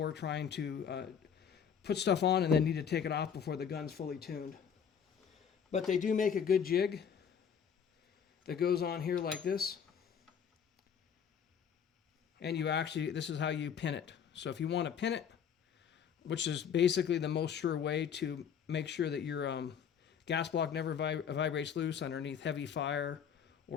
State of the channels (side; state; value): right; quieter; 7.5 dB